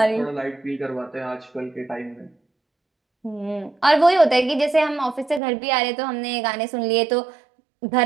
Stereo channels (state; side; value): drops out; left; at 5.4 s